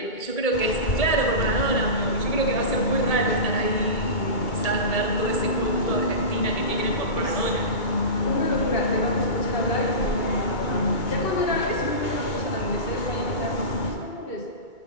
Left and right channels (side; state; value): right; late; 2.2 ms